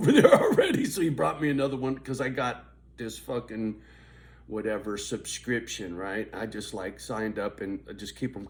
there already, so he brought me another one because I got this fucking whatever subscription, right? I just like signed up and I just keep them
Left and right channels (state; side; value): identical; both; correlation 1.00